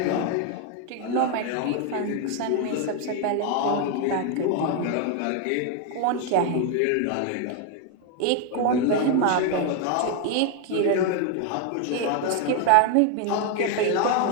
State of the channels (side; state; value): both; different; correlation 0.01